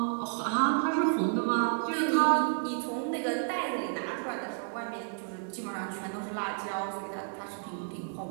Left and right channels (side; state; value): left; silent; digital silence